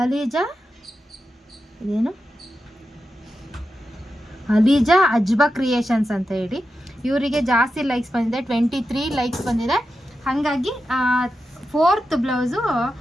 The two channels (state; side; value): normal; both; correlation 0.90